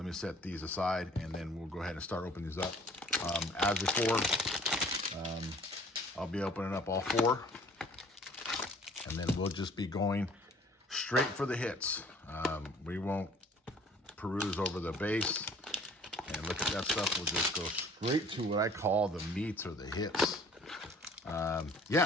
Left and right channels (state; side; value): normal; both; correlation 0.53